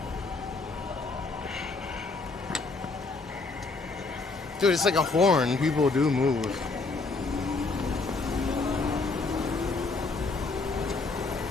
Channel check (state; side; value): quieter; right; 3.8 dB